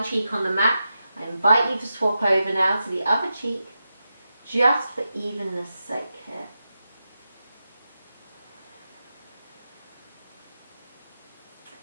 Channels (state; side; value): inverted; both; correlation -0.90